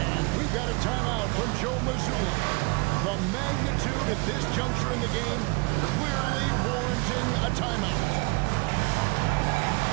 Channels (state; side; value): quieter; left; 27.8 dB